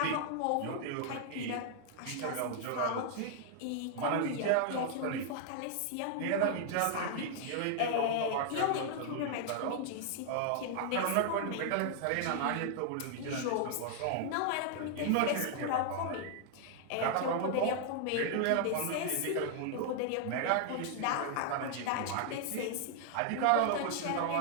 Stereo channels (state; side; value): different; both; correlation 0.00